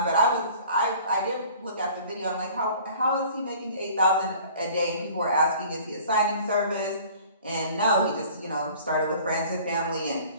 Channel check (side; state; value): both; inverted; correlation -0.48